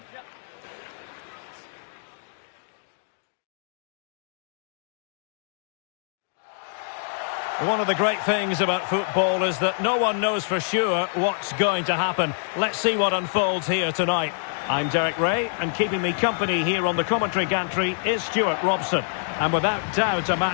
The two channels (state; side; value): silent; right; digital silence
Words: One of the great things about football is that no one knows for sure what's going to happen. Let's see what unfolds here tonight. I'm Derek Ray, and keeping me company here on the commentary gantry is Stuart Robson. And without doubt, a